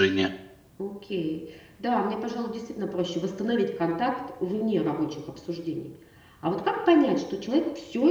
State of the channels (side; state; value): both; identical; correlation 1.00